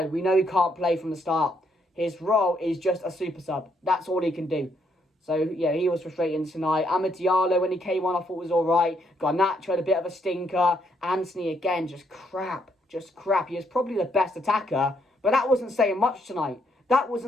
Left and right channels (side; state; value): both; normal; correlation 0.73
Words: he can't play from the start. His role is just a super sub. That's all he can do. So, yeah, he was frustrating tonight. Amad Diallo, when he came on, I thought was all right. Garnacho had a bit of a stinker. Anthony, again, just crap. He is probably the best attacker. But that wasn't saying much tonight.